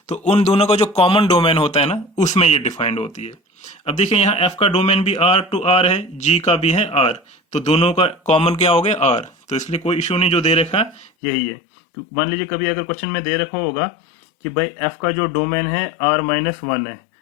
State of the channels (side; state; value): right; drops out; at 11.1 s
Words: तो उन दोनों का जो कॉमन डोमेन होता है ना, उसमें ये डिफाइंड होती है। अब देखिए यहाँ f का डोमेन भी r टू r है, g का भी है r, तो दोनों का कॉमन क्या हो गया r, तो इसलिए कोई इश्यू नहीं, जो दे रखा यही है। तो मान लीजिए कभी अगर क्वेश्चन में दे रखा होगा कि भाई f का जो डोमेन है r-1 है